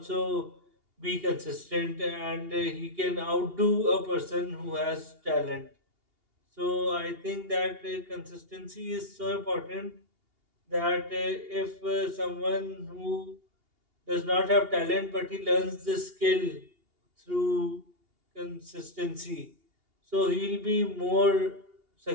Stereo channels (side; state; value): left; late; 2.8 ms